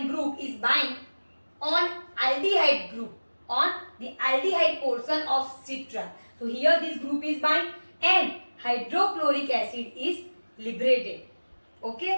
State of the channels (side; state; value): both; inverted; correlation -1.00